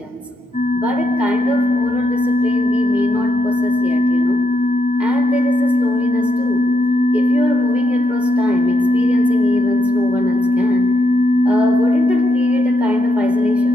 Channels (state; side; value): normal; both; correlation 0.80